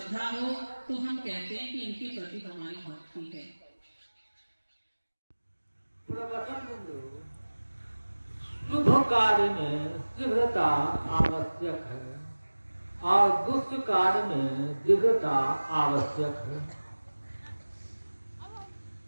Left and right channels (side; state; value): both; inverted; correlation -1.00